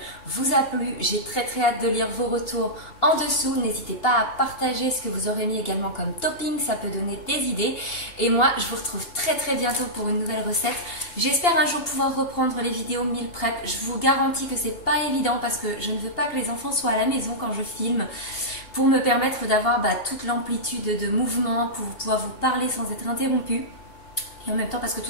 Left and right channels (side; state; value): right; late; 2.8 ms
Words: vous a plu, j'ai très très hâte de lire vos retours en dessous. N'hésitez pas à partager ce que vous aurez mis également comme topping, ça peut donner des idées. Et moi, je vous retrouve très très bientôt pour une nouvelle recette. J'espère un jour pouvoir reprendre les vidéos meal prep. Je vous garantis que c'est pas évident parce que je ne veux pas que les enfants soient à la maison quand je filme, pour me permettre d'avoir toute l'amplitude de mouvement, pour pouvoir vous parler sans être interrompu. Et en même temps parce que tout